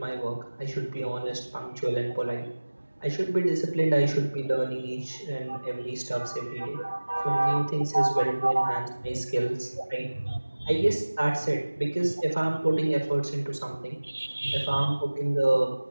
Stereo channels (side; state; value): both; inverted; correlation -1.00